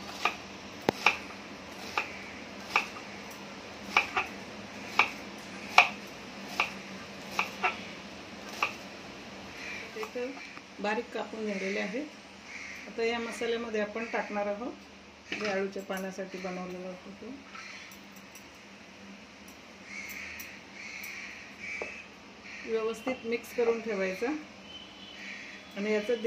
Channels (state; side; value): identical; both; correlation 1.00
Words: बारीक कापून झालेले आहेत. आता या मसाल्यामध्ये आपण टाकणार आहोत जे आळूच्या पाण्यासाठी बनवलेलं होतं ते. व्यवस्थित मिक्स करून ठेवायचं आणि याचं